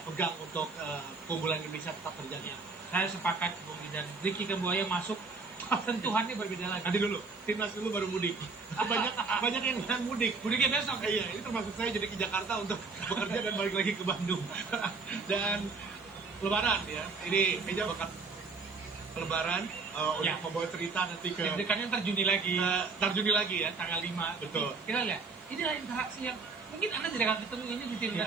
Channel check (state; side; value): quieter; left; 4.3 dB